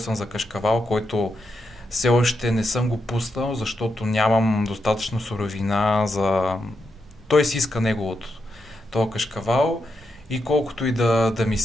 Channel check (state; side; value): normal; both; correlation 0.84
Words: за кашкавал, който все още не съм го пуснал, защото нямам достатъчно суровина за... Той си иска неговото, този кашкавал, и колкото и да ми